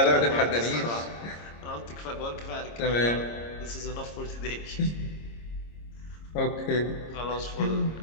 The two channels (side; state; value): right; late; 26 ms